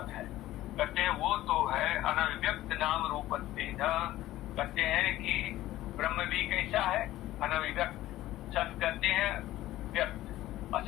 है, कहते हैं वो तो है अनव्यक्त नाम रूपत्वेन, कहते हैं कि ब्रह्म भी कैसा है? अनभिव्यक्त। सत कहते हैं व्यक्त,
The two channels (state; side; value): quieter; right; 15.3 dB